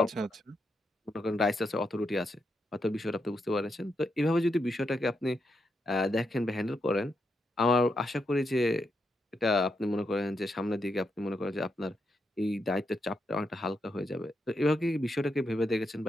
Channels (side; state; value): both; normal; correlation 0.82